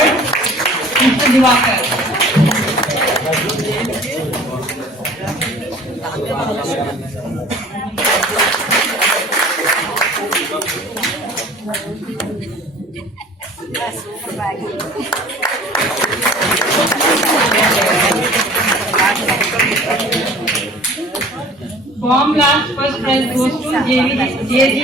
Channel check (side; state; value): both; normal; correlation 0.47